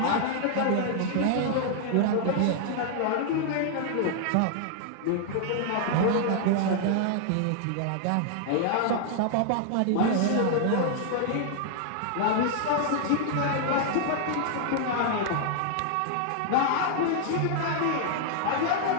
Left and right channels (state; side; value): different; both; correlation 0.00